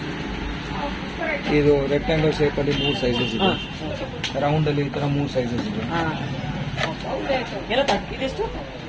ಇದು ರೆಕ್ಟಾಂಗಲ್ ಶೇಪಲ್ಲಿ 3 ಸೈಜಸ್ ಇದೆ. ಹಾಂ ಓಕೆ ರೌಂಡ್ ಅಲ್ಲಿ ಈ ತರ 3 ಸೈಜಸ್ ಇದೆ. ಹಾಂ ಎಲ್ಲ ಇದೆಷ್ಟು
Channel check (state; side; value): identical; both; correlation 1.00